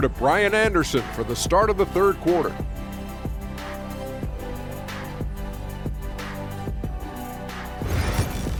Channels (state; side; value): identical; both; correlation 1.00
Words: to Brian Anderson for the start of the third quarter.